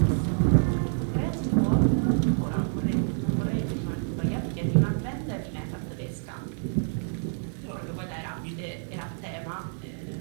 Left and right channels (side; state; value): left; silent; digital silence